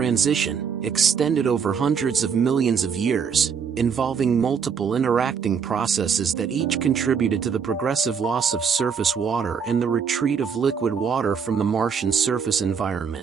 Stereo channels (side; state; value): left; quieter; 6.5 dB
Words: extended over hundreds of millions of years, involving multiple interacting processes that each contributed to the progressive loss of surface water and the retreat of liquid water from the Martian surface